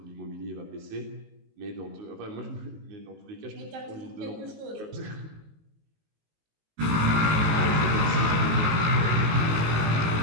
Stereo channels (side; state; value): left; late; 19 ms